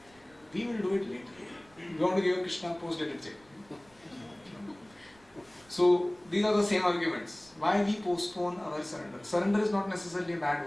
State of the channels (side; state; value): right; noise; rumble, 30 dB below the sound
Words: We will do it later. We want to give Krishna post-dated check. So these are the same arguments. Why we postpone our surrender? Surrender is not necessarily a